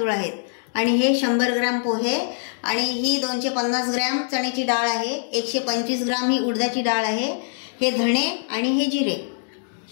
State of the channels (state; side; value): silent; right; digital silence